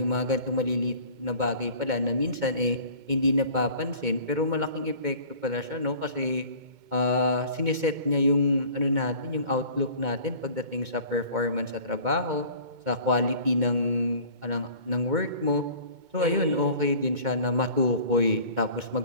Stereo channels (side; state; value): left; late; 2.2 ms